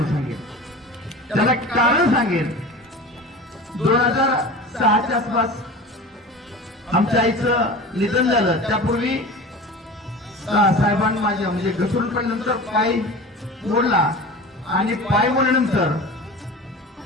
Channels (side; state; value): both; normal; correlation 0.35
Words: सांगेन, त्याला कारण सांगेन. 2006च्या आसपास आमच्या आईचं निधन झालं. त्यापूर्वी साहेबांनी माझ्या म्हणजे घसरून पडल्यानंतर पाय मोडला आणि पाय मोडल्यानंतर